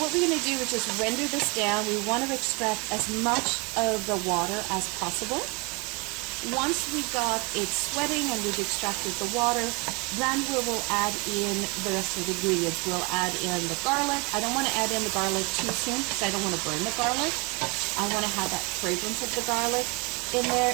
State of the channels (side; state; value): left; quieter; 29.5 dB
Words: what we're going to do is just render this down. We want to extract as much of the water as possible. Once we got it sweating and we've extracted the water, then we will add in the rest of the ingredients. We'll add in the garlic. I don't want to add in the garlic too soon because I don't want to burn the garlic. I want to have that fragrance of the garlic in there,